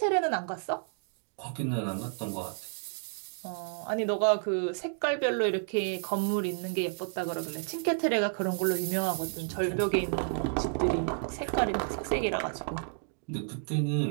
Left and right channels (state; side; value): silent; left; digital silence